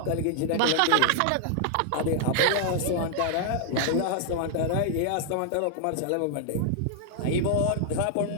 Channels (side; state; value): both; different; correlation -0.01